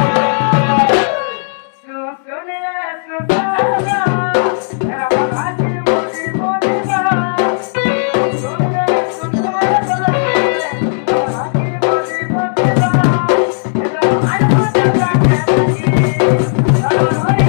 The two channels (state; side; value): silent; right; 71 dB below the other